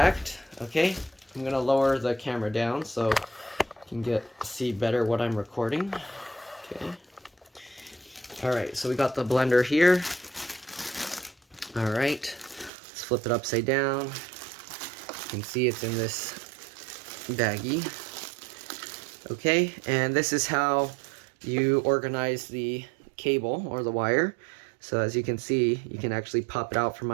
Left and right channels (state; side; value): drops out; left; at 12.7 s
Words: Okay, I'm gonna lower the camera down so you can see better what I'm recording. Okay. All right, so we got the blender here. All right, let's flip it upside down. You can see it's in this baggie. Okay, and this is how you organize the cable or the wire. So as you can see, you can actually pop it out from